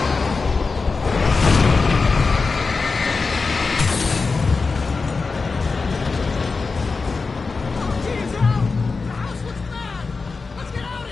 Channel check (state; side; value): quieter; right; 4.3 dB